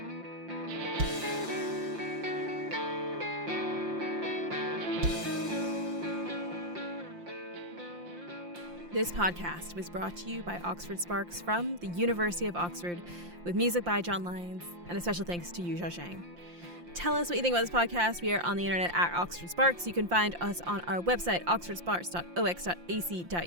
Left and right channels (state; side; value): late; left; 5.7 ms